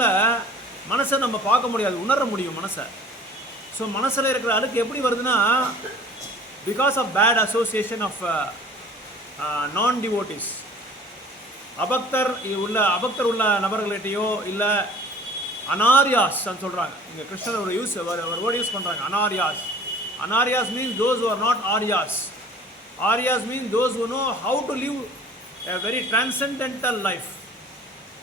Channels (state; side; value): normal; both; correlation 0.47